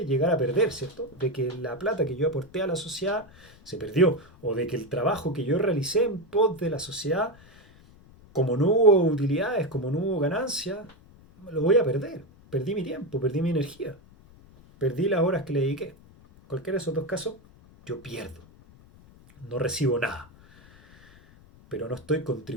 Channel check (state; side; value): noise; left; rumble, 25 dB below the sound